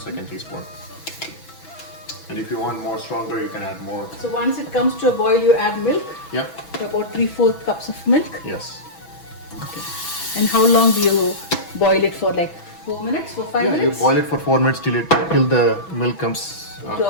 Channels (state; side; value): late; right; 6.1 ms